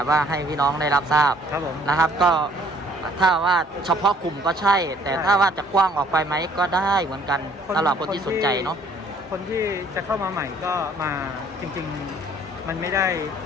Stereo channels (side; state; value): both; normal; correlation 0.59